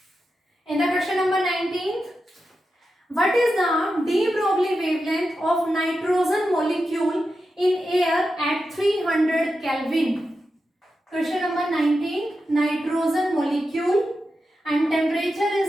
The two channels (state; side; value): normal; both; correlation 0.89